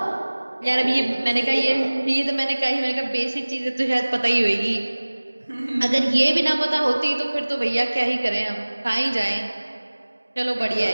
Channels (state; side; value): inverted; both; correlation -1.00